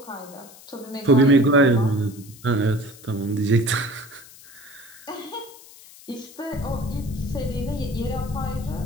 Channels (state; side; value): noise; left; hiss, 20 dB below the sound